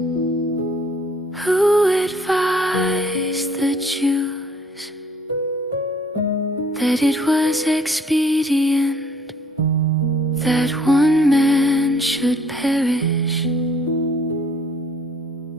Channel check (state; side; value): normal; both; correlation 0.60